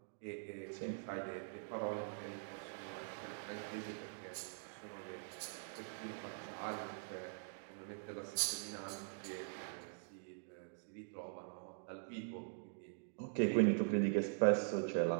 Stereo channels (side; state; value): left; silent; digital silence